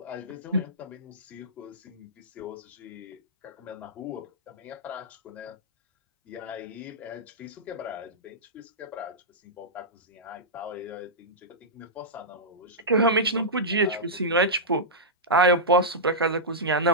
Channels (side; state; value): both; normal; correlation -0.11